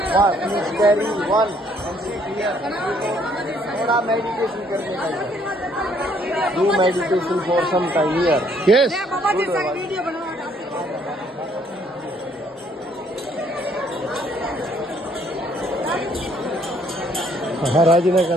Do meditation for some time here. Yes. മഹാരാജിനെ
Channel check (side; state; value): both; normal; correlation 0.65